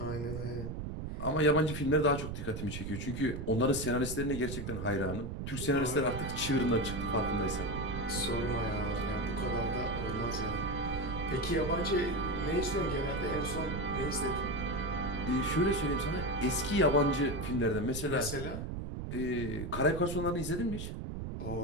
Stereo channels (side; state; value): right; noise; rumble, 5 dB below the sound